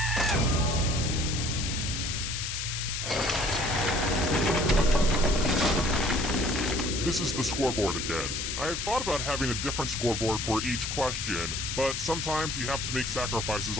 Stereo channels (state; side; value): noise; left; hiss, 3 dB below the sound